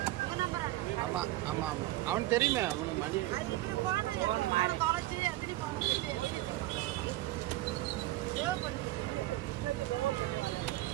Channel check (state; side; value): quieter; left; 16.8 dB